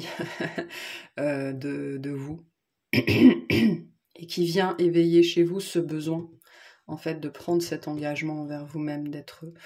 de vous, et qui vient éveiller chez vous ce besoin, en fait, de prendre cet engagement envers vous-même, d'être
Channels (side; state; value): both; identical; correlation 1.00